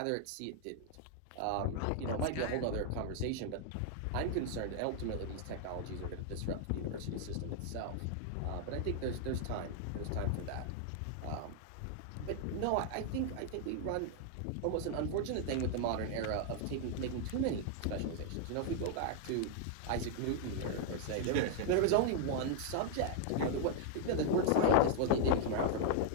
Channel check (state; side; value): different; both; correlation 0.00